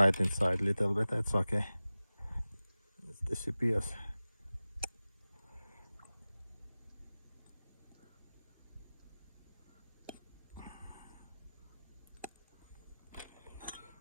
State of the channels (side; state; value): both; inverted; correlation -0.97